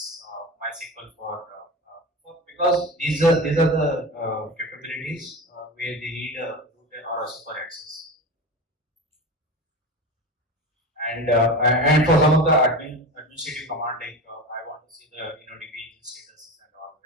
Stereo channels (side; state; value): both; normal; correlation 0.27